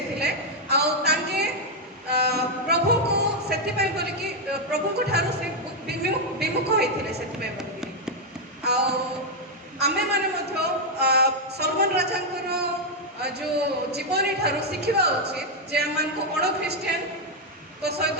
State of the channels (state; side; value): normal; both; correlation 0.00